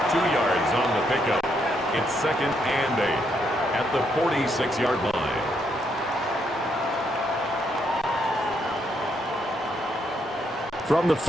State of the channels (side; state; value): both; normal; correlation 0.75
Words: 2 yards on the pickup. It's second and 8 at the 46-yard line. From the